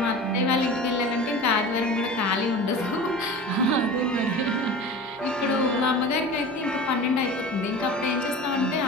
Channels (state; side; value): normal; both; correlation 0.35